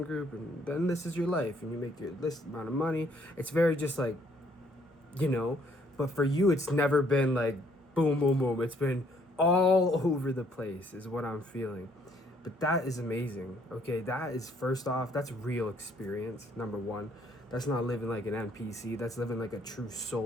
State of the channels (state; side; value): normal; both; correlation 0.65